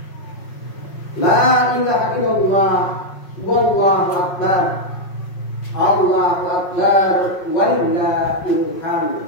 La ilaha illallah. Wallahu akbar. Allahu akbar. Walillahil hamd.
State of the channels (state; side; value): late; right; 5.5 ms